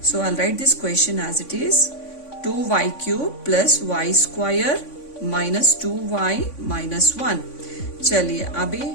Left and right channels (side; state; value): right; late; 3.5 ms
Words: So I write this question as it is 2y³ + y² - 2y - 1। चलिए अभी